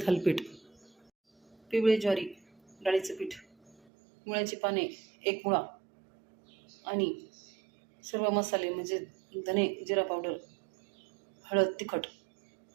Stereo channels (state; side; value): drops out; left; at 3.8 s